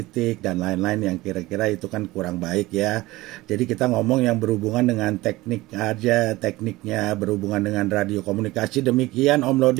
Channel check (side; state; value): left; quieter; 19.1 dB